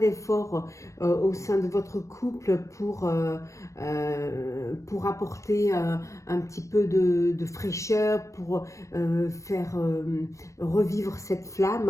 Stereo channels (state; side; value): late; right; 0.15 ms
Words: au sein de votre couple pour apporter un petit peu de fraîcheur, pour faire revivre cette flamme,